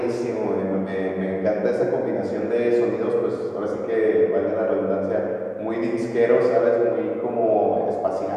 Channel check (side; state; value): both; identical; correlation 1.00